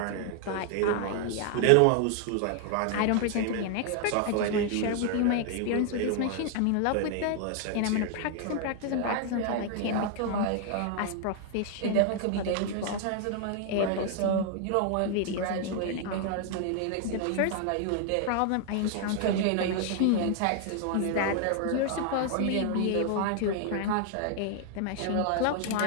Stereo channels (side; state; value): both; different; correlation 0.00